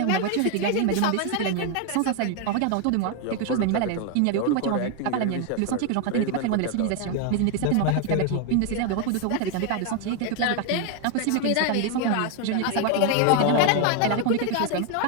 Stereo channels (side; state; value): both; different; correlation 0.01